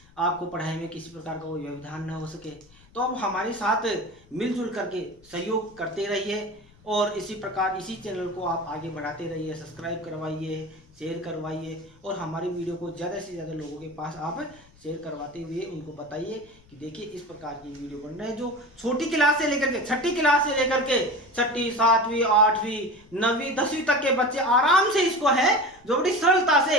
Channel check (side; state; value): left; noise; rumble, 27 dB below the sound